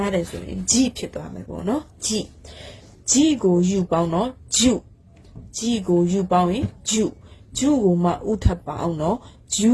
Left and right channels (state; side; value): identical; both; correlation 1.00